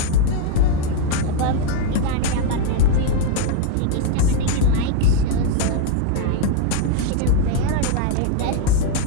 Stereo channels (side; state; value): both; different; correlation 0.01